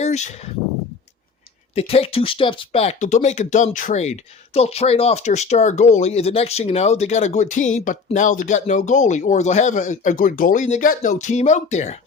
they take two steps back. They'll make a dumb trade. They'll trade off their star goalie, and the next thing you know, they got a good team, but now they got no goalie. Or they'll have a good goalie, and they got no team out there.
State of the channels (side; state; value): right; quieter; 4.9 dB